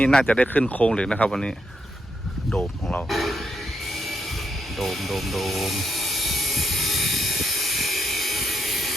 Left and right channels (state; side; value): normal; both; correlation 0.80